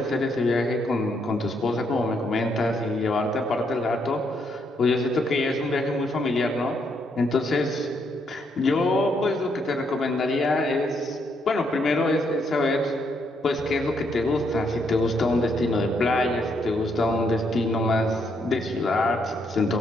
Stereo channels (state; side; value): normal; both; correlation 0.75